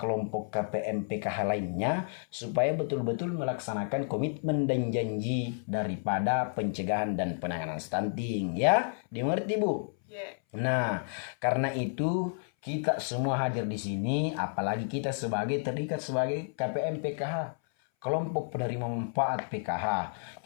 kelompok KPM PKH lainnya supaya betul-betul melaksanakan komitmen dan janji daripada pencegahan dan penanganan stunting, ya. Dimengerti Bu? Nah, karena itu kita semua hadir di sini, apalagi kita terikat sebagai KPM PKH, kelompok penerima manfaat PKH.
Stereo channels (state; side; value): silent; right; 57 dB below the other